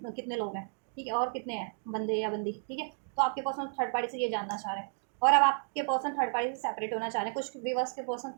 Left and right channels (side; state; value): left; silent; digital silence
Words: लोग हैं, ठीक है, और कितने हैं बंदे या बंदी, ठीक है, तो आपके पर्सन थर्ड पार्टी से ये जानना चाह रहे हैं, और अब आपके पर्सन थर्ड पार्टी से सेपरेट होना चाह रहे हैं, कुछ व्यूअर्स के पर्सन